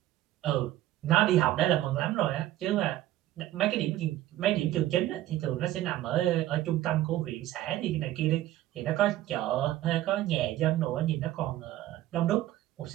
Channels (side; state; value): left; quieter; 14.4 dB